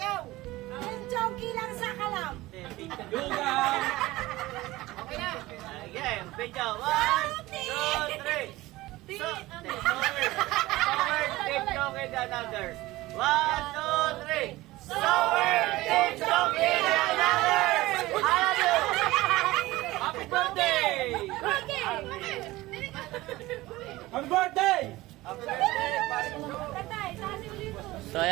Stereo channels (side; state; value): left; quieter; 18.6 dB